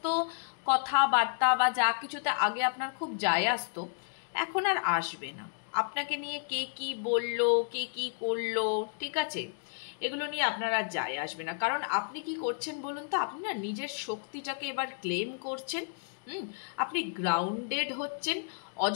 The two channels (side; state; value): right; silent; digital silence